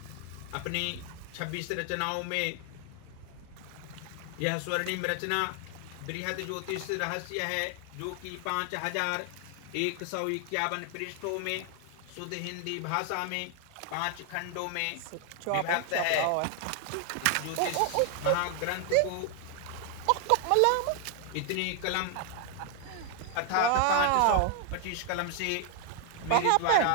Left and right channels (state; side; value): different; both; correlation 0.00